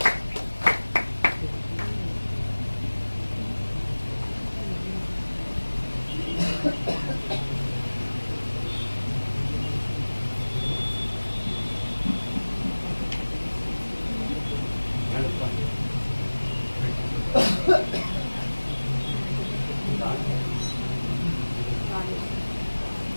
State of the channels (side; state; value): both; inverted; correlation -1.00